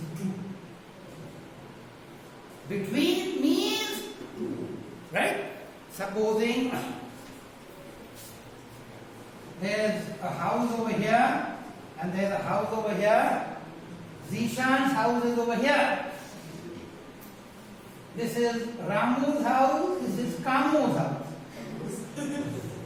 two. Between means two. Right? Supposing there's a house over here and there's a house over here. Zishan's house is over here. This is Ramu's house, this is Kamu's house.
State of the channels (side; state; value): both; identical; correlation 1.00